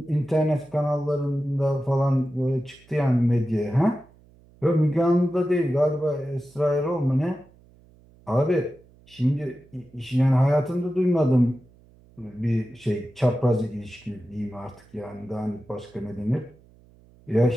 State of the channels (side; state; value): right; noise; hum, 28 dB below the sound